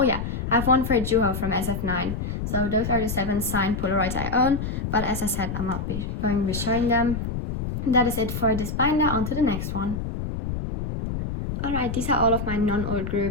yeah, I have one for Juho from SF9. So those are the 7 signed Polaroids I own. But as I said, I'm not going to be showing them. That is it for this binder. On to the next one. Alright, these are all of my non-old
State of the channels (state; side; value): noise; left; rumble, 4 dB below the sound